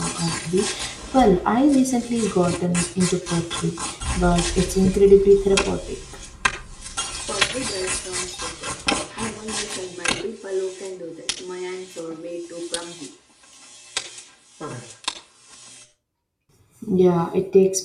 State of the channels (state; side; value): identical; both; correlation 1.00